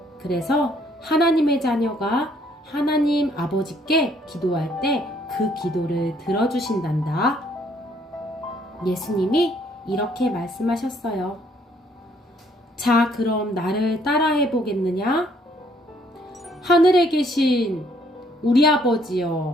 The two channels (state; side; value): normal; both; correlation 0.65